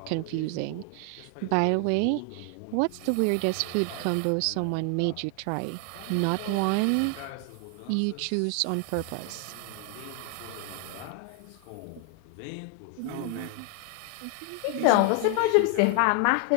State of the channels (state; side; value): different; both; correlation 0.00